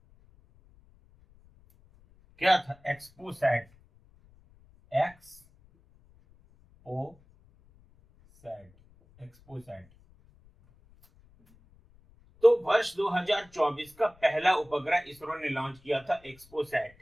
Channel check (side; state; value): left; noise; rumble, 28 dB below the sound